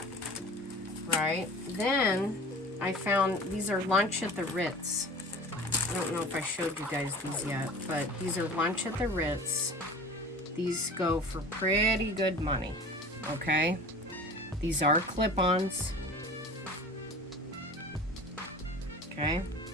right? Then I found, these are lunch at the Ritz. I don't know if I showed you guys these yet, but these are lunch at the Ritz. These go for pretty good money, okay? These are clip-ons. Okay?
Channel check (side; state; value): both; normal; correlation 0.40